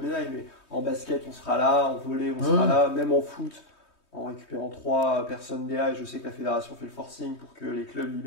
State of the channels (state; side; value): late; right; 3.2 ms